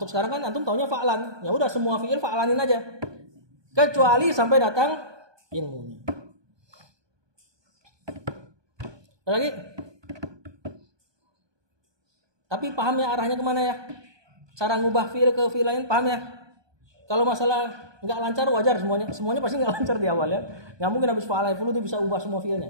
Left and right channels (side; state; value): left; late; 1.2 ms